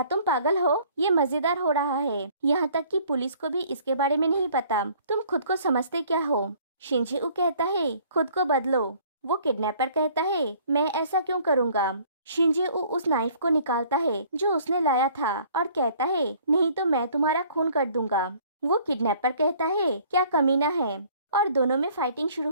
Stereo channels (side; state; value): both; inverted; correlation -0.56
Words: तुम पागल हो? ये मजेदार हो रहा है, यहाँ तक कि पुलिस को भी इसके बारे में नहीं पता। तुम खुद को समझते क्या हो? शिंजेऊ कहता है, खुद को बदलो। वो किडनैपर कहता है, मैं ऐसा क्यों करूँगा? शिंजेऊ उस नाइफ को निकालता है जो उसने लाया था और कहता है, नहीं तो मैं तुम्हारा खून कर दूंगा। वो किडनैपर कहता है, क्या कमीना है, और दोनों में फाइटिंग शुरू